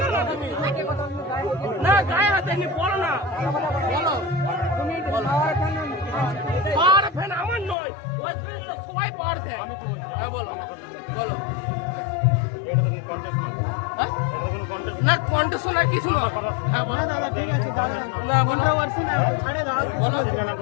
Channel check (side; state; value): right; drops out; at 7.8 s